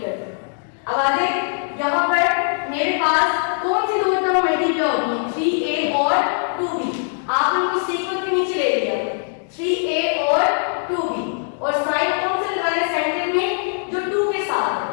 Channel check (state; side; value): silent; right; digital silence